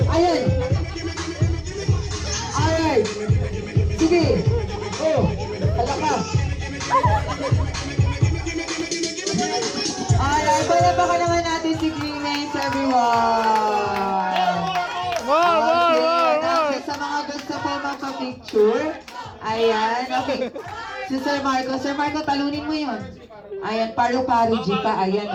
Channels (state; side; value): identical; both; correlation 1.00